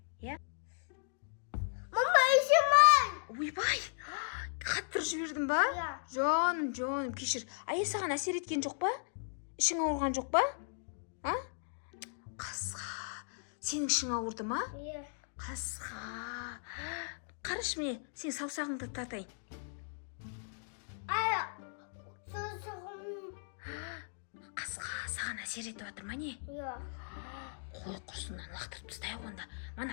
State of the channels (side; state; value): right; silent; digital silence